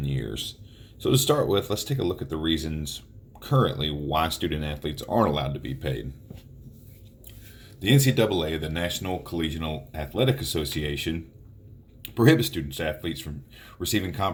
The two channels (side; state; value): both; identical; correlation 1.00